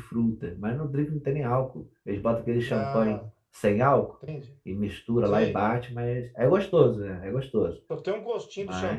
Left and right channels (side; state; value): both; identical; correlation 1.00